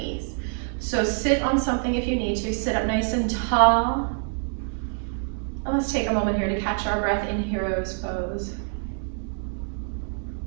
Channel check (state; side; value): silent; left; 55 dB below the other